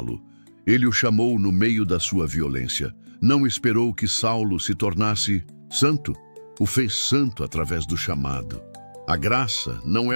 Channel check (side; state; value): both; inverted; correlation -1.00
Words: Ele o chamou no meio da sua violência. Não esperou que Saulo se tornasse santo. O fez santo através do chamado. A graça não